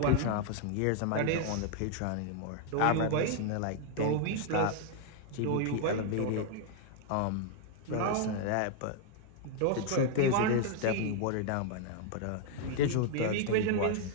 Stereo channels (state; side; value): different; both; correlation 0.00